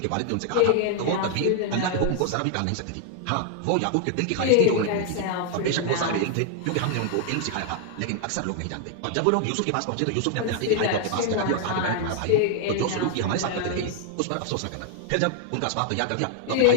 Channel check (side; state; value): both; different; correlation 0.00